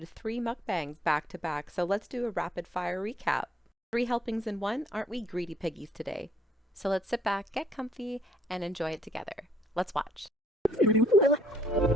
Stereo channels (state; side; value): normal; both; correlation 0.66